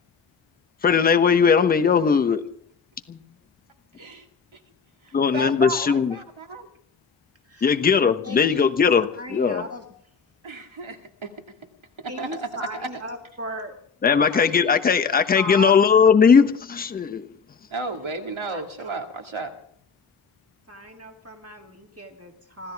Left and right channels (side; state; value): right; quieter; 5.6 dB